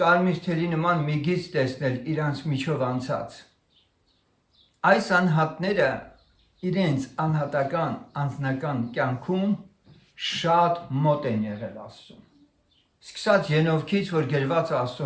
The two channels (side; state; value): both; identical; correlation 1.00